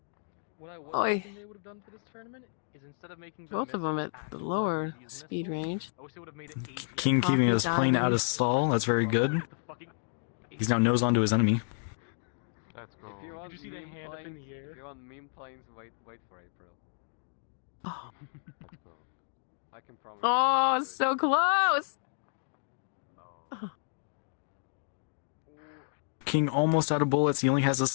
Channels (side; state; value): right; silent; digital silence